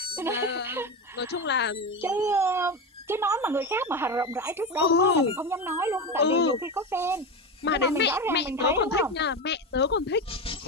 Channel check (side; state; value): both; normal; correlation 0.18